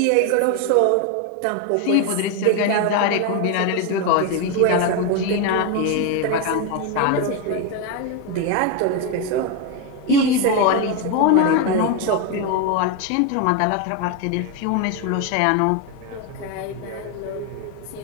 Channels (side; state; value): both; different; correlation 0.02